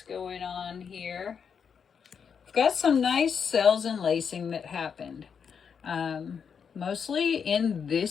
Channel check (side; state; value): right; quieter; 6.7 dB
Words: going on here. We've got some nice cells and lacing that happened. Mostly in